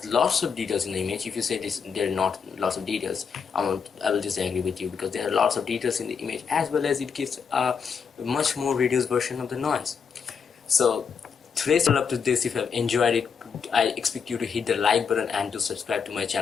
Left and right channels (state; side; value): quieter; right; 6.2 dB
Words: lots of details in the image. If you say this there are not lots of details, I will disagree with you, because there are lots of details in the image, as well as it gives a much more reduced version of the noise. So today's all up to this. If you have enjoyed it, I expect you to hit the like button and to subscribe to my